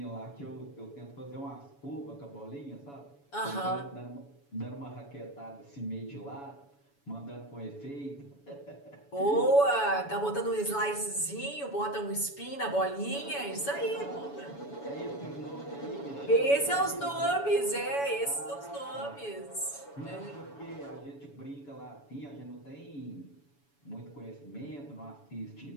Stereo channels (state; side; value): late; right; 7.1 ms